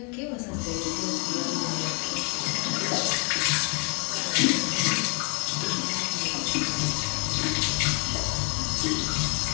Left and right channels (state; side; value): quieter; right; 35.3 dB